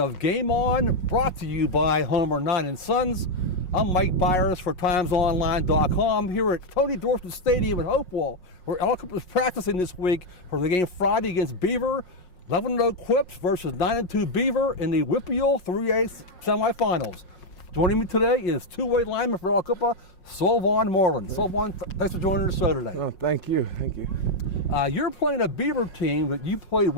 Game On, brought to you by Homer 9 & Sons. I'm Mike Bires for TimesOnline.com here at Tony Dorsett Stadium in Hopewell, where Aliquippa is practicing this week for the game Friday against Beaver. 11-0 Quips versus 9-2 Beaver in the WPIAL 3A Semifinals. Joining me today is two-way lineman for Aliquippa, Solvauhn Moreland. Solvaughn, thanks for joining the show today. Oh, thank you. You're playing a Beaver team that you played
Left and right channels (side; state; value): right; late; 5.5 ms